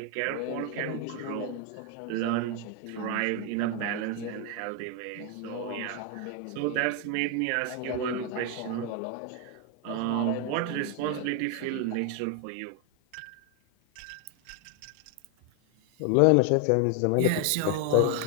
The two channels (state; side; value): different; both; correlation 0.01